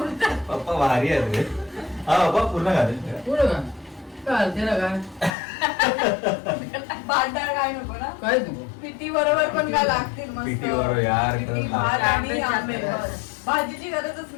पप्पा भारी आहे रे हा पप्पा पूर्ण घालेल पुढं का काय त्याला काय भांडार काय नको ना काहीच नको पिठी बरोबर पण काय लागतील मस्त पिठी बरोबर यार, पिठी, खरंच भात आणि आंबे आंबे जास्त. बस. भाजीची गरजच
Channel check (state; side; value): drops out; right; at 5.3 s